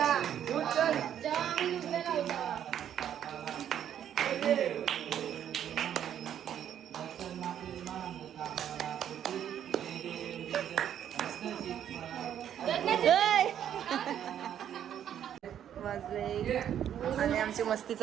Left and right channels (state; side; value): quieter; left; 9.9 dB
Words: वाजले आणि आमची मस्ती